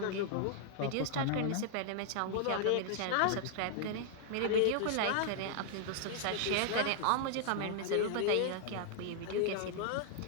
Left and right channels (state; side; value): different; both; correlation -0.01